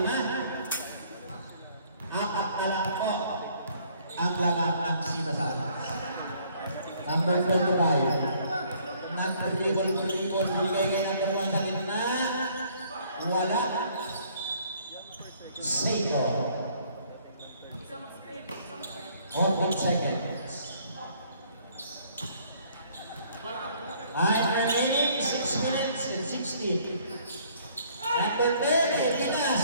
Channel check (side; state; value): both; inverted; correlation -0.61